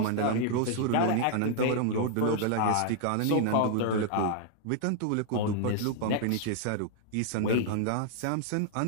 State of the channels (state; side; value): different; both; correlation -0.01